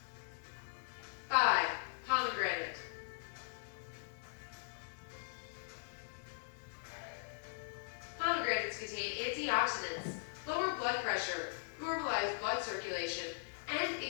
5. Pomegranate. Pomegranates contain antioxidants, lower blood pressure, normalize blood circulation, and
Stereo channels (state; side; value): silent; right; digital silence